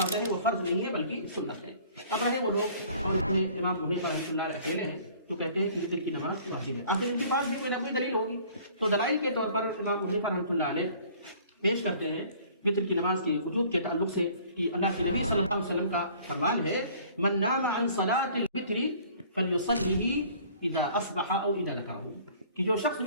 ہیں وہ فرض نہیں ہیں بلکہ سنت ہیں۔ اب رہے وہ لوگ اور اس میں امام حنیفہ رحمۃ اللہ علیہ اکیلے ہیں تو کہتے ہیں کہ وتر کی نماز واجب ہے، آخر ان کے پاس بھی کوئی نہ کوئی دلیل ہوگی۔ تو دلائل کے طور پر امام حنیفہ رحمۃ اللہ علیہ پیش کرتے ہیں وتر کی نماز کے وجوب کے تعلق سے کہ اللہ کے نبی صلی اللہ علیہ وسلم کا فرمان ہے من نام عن صلاۃ الوتر فلیصلیہ اذا اصبح او اذا ذکرہ، کہ جو شخص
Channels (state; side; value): inverted; both; correlation -0.52